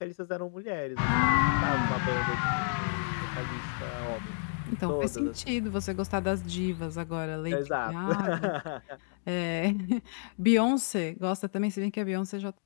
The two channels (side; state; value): right; silent; digital silence